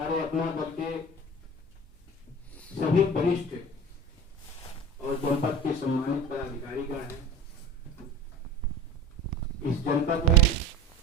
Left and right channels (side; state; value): both; normal; correlation 0.36